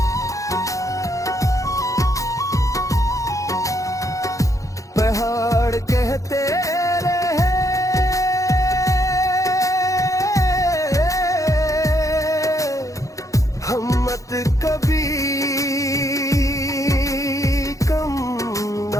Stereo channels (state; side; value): late; right; 0.16 ms